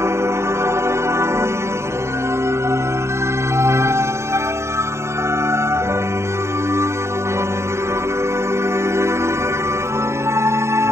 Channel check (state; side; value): late; left; 0.13 ms